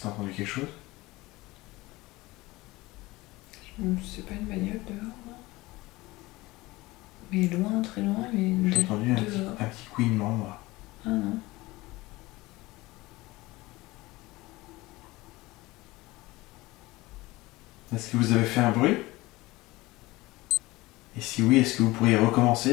entendu quelque chose? C'est pas une bagnole dehors, non? Mais loin, très loin, mais J'ai entendu un dehors. petit couinement, moi. Ah non. Est-ce que vous avez fait un bruit? Et si oui, est-ce que vous pourriez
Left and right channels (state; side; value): quieter; right; 20.4 dB